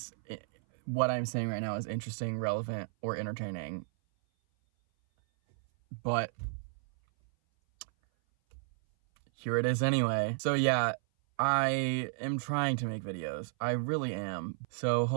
what I'm saying right now is interesting, relevant, or entertaining. But here it is anyway. So yeah, I am trying to make videos. I really am. So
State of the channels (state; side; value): silent; left; 56 dB below the other